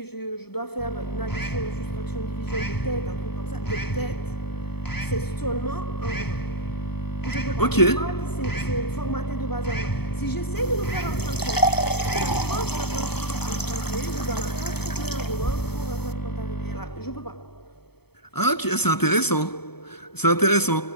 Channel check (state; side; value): late; right; 0.97 ms